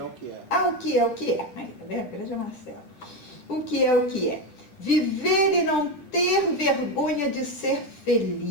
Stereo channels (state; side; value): late; right; 9.9 ms